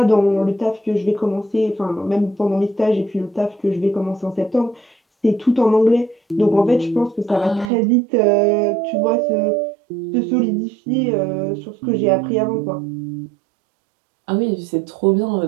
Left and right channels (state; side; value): drops out; left; at 7.7 s